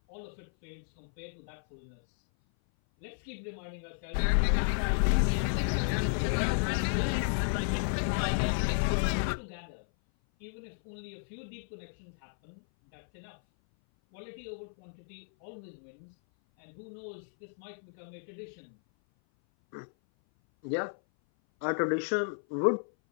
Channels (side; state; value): right; silent; 56 dB below the other